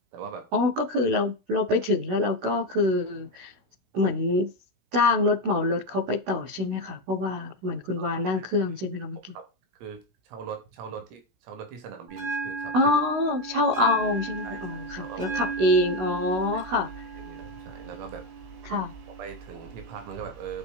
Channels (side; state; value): left; late; 16 ms